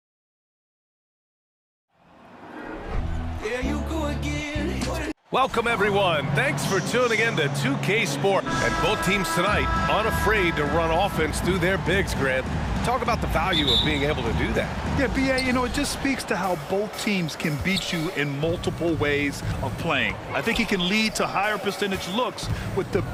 There you go again. Welcome, everyone. Thanks for tuning in to 2K Sport. And both teams tonight unafraid to run offense through their bigs, Grant. Talk about the value of being able to do that. Yeah, B.A., you know, it just speaks to how both teams can beat you in multiple ways of playing. I think it can lead to higher percentage looks with the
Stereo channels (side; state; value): both; identical; correlation 1.00